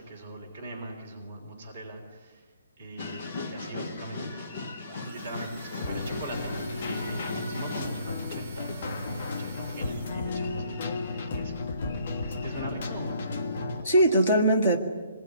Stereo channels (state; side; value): inverted; both; correlation -0.63